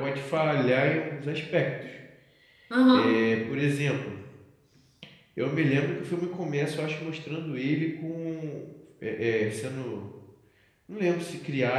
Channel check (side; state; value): both; identical; correlation 1.00